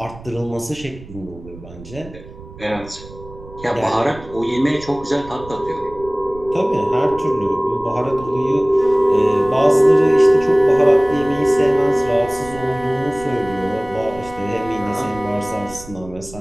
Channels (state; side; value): noise; right; rumble, 17 dB below the sound